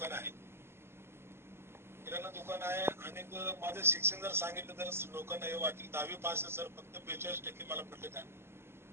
आहे. किराणा दुकान आहे. आणि माझं शिक्षण जर सांगितलं तर लोकांना हे वाटेल 10वी पास आहे सर, फक्त 42% मला पडले काय.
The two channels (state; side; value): late; left; 0.12 ms